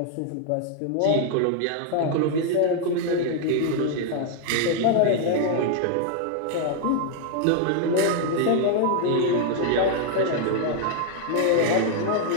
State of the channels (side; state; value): both; different; correlation 0.00